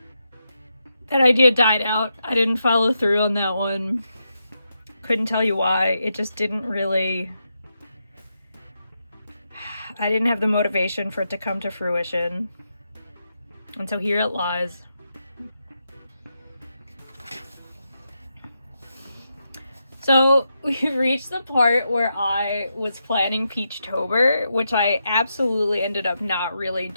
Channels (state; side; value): inverted; both; correlation -0.85